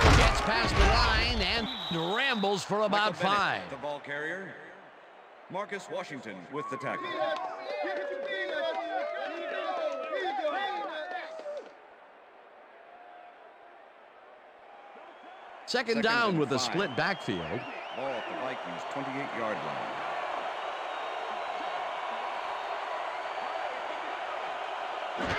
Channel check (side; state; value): both; identical; correlation 1.00